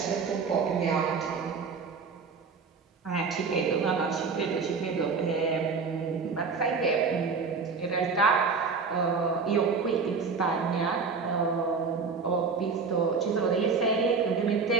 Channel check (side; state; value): left; quieter; 5.0 dB